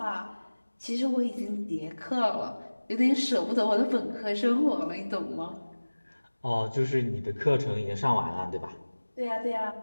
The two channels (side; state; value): both; inverted; correlation -1.00